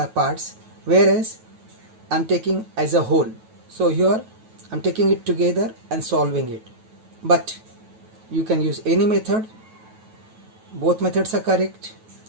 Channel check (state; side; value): late; left; 9.2 ms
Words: parts, whereas I am taking as a whole. So here I am taking it together and solving it. But you can use any method. Both methods are correct,